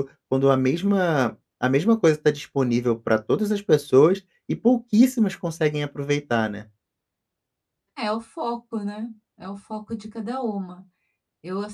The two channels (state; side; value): identical; both; correlation 1.00